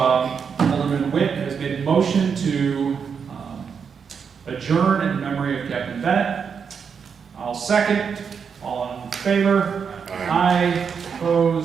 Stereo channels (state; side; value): quieter; left; 6.5 dB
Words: Alderman Witt has made a motion to adjourn in memory of Captain Bennett. I'll second. All in favor? Aye.